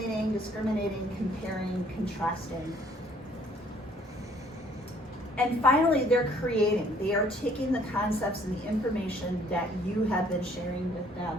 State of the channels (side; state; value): both; normal; correlation 0.60